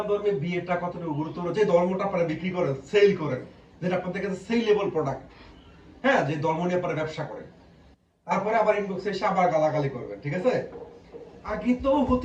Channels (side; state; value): both; identical; correlation 1.00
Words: ধর্মে বিয়েটা কতটুকু গুরুত্বপূর্ণ, যে ধর্মটা আপনারা বিক্রি করেন, সেল করেন, যেটা আপনাদের কাছে সেলেবল প্রোডাক্ট, হ্যাঁ, যে ধর্ম নিয়ে আপনারা ব্যবসা করেন, তারপরে আবার ইনবক্সে এসে আবার গালাগালি করবেন। ঠিক আছে? আগে তো